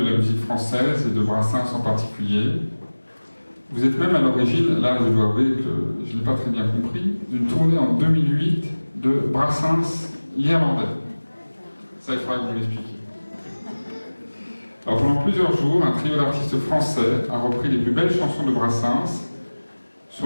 la musique française et de Brassens en particulier. Vous êtes même à l'origine, là je dois avouer que je n'ai pas très bien compris, d'une tournée en 2008 de Brassens l'Irlandais. Ça, il faudra que vous m'expliquiez. Alors pendant plusieurs jours, un trio d'artistes français a repris les plus belles chansons de Brassens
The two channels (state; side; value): inverted; both; correlation -1.00